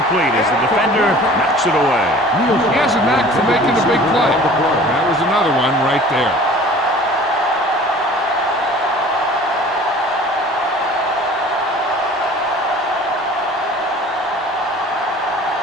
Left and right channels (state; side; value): normal; both; correlation 0.46